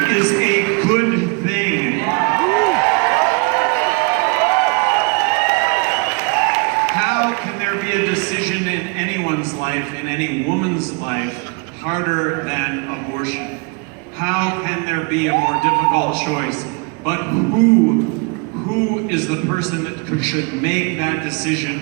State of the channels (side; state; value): left; quieter; 32.8 dB